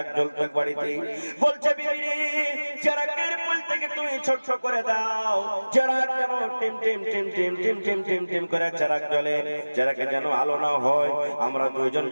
জ্বলতে বাড়িতে। বলছে, বিবি চারাকের পলিতাকে তুমি ছোট করে দাও, চারাক যেন team team team team team team team team করে চারাক জ্বলে, চারাকে যেন আলো না হয়। আমরা দুইজন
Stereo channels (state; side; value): inverted; both; correlation -1.00